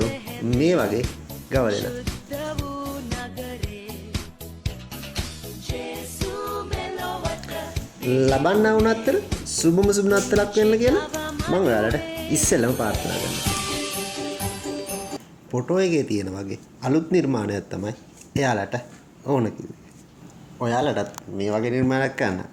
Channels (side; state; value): both; identical; correlation 1.00